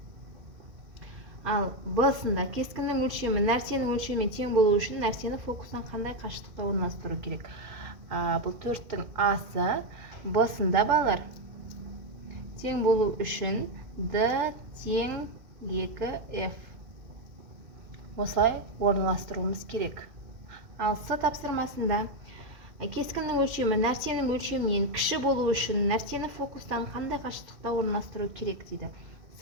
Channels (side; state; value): left; late; 2.1 ms